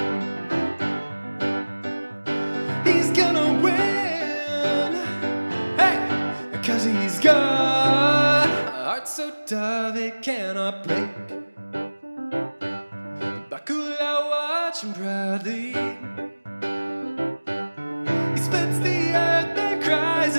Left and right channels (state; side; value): inverted; both; correlation -1.00